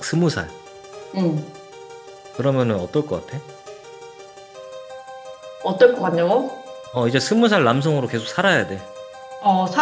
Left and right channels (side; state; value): both; identical; correlation 1.00